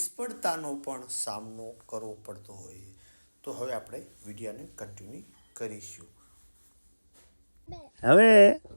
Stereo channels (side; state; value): both; inverted; correlation -1.00